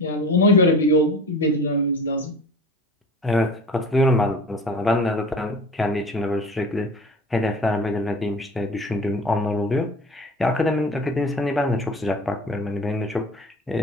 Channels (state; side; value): normal; both; correlation 0.38